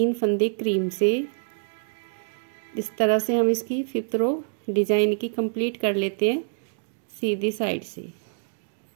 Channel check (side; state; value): left; silent; digital silence